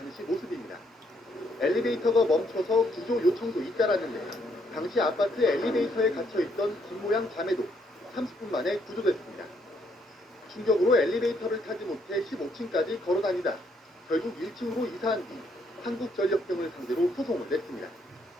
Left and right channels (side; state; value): both; normal; correlation 0.71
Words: 모습입니다. 엘리베이터가 멈춰서 구조 요청도 잇따랐는데 당시 아파트 엘리베이터에 갇혀있던 김모양 자매도 30분 만에 구조됐습니다. 충격으로 엘리베이터를 타지 못해 15층까지 걸어다니다 결국 1층으로 이사한 뒤 한국전력 등을 상대로 소송을 냈습니다.